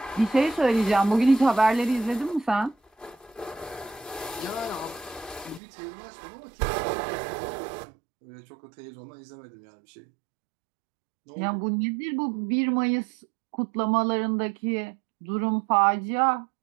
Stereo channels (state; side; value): drops out; left; at 5.6 s